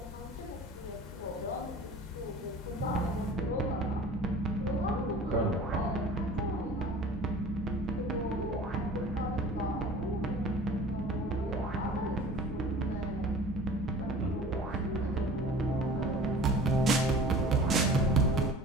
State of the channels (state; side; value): normal; both; correlation 0.43